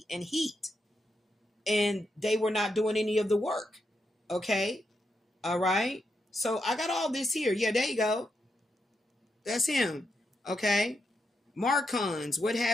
and heat. And they were not doing any of the work. Okay. All right. So I got all this here. Yeah, there you go. That's him. Okay. Marcons. What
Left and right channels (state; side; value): normal; both; correlation 0.83